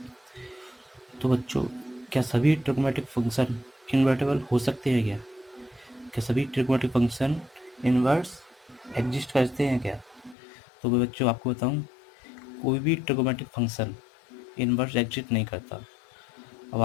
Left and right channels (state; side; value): drops out; right; at 10.4 s